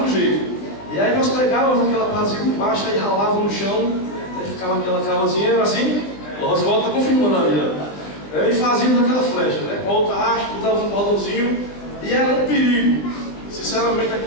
jeito. E aí nós pegávamos aquela partezinha por baixo e ralava no chão, aí ficava aquela cavazinha, era assim. O Oswaldo está confirmando ali, ó. E fazíamos aquela flecha, né? Com a outra haste, dava um cordãozinho, e era um perigo. Sinceramente,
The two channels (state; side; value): late; right; 20 ms